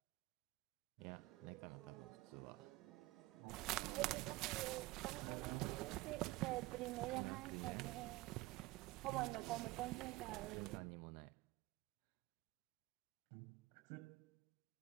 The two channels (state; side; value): quieter; left; 20.2 dB